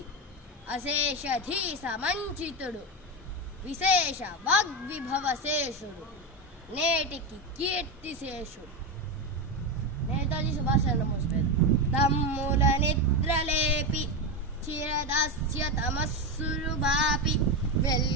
అశేషధీ సమంచితుడు విశేష వాగ్విభవశేషుడు నేటికి కీర్తిశేషుడు। నేతాజీ సుభాష్ చంద్రబోస్ పేరు। తమ్ముల నిద్రలేపి చిరదాస్య తమస్సులు బాపి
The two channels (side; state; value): both; normal; correlation 0.13